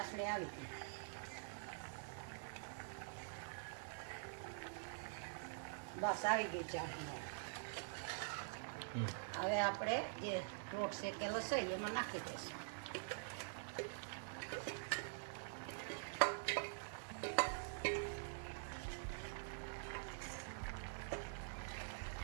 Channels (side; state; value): left; silent; digital silence